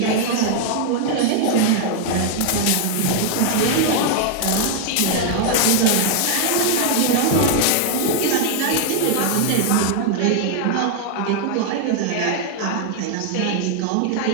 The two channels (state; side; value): different; both; correlation 0.00